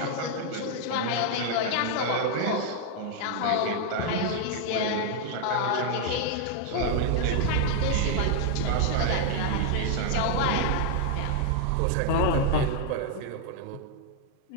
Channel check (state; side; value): different; both; correlation 0.00